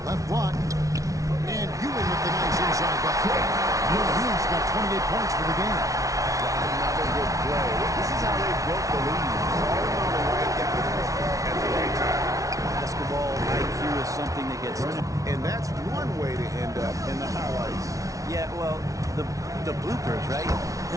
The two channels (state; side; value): late; left; 0.17 ms